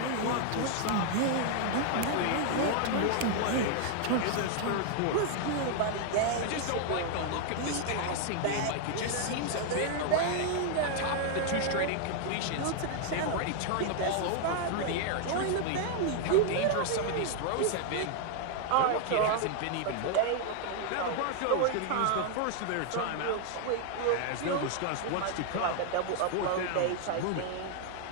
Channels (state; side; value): different; both; correlation 0.00